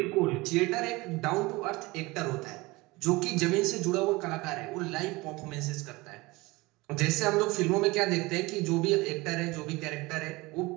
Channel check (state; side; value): quieter; left; 22.4 dB